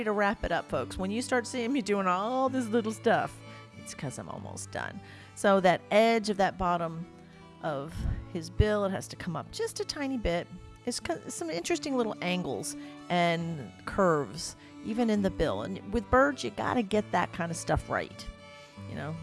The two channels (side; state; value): both; identical; correlation 1.00